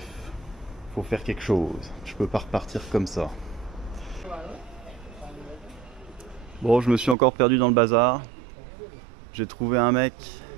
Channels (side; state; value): left; drops out; at 7.2 s